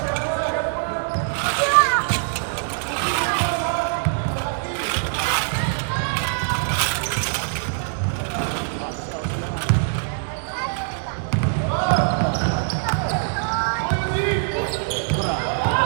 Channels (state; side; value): silent; left; digital silence